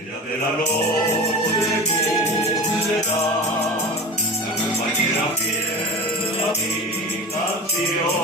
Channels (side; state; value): both; normal; correlation 0.32